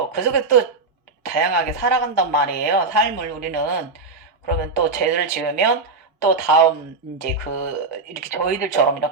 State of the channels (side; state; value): left; quieter; 4.0 dB